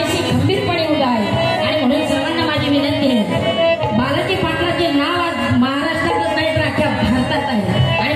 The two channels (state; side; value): identical; both; correlation 1.00